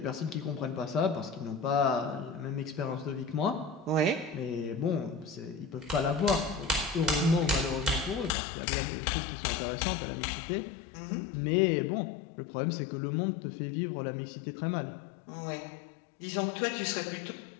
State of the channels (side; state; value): right; drops out; at 8.3 s